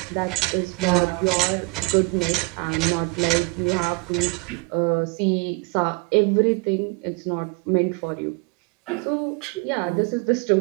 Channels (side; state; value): left; quieter; 28.8 dB